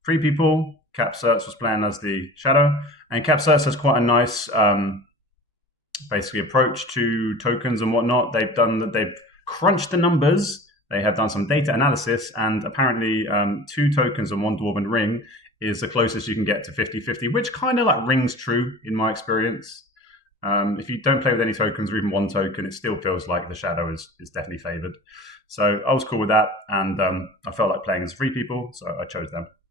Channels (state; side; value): normal; both; correlation 0.39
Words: free people. kapcerz was playing as the shadow, and kapcerz has quite a nice, basically approach to tokens and whatnot. They've crunched the numbers. They have done some data analysis, and apparently 2 tokens and 1 dwarven ring is the closest you can get to 50-50, which kind of like rings true in my experience. If you don't play with any tokens or even 1 token, it still feels like the shadow is definitely favored. So I was cool with that, and I felt like playing as free people, so I chose them.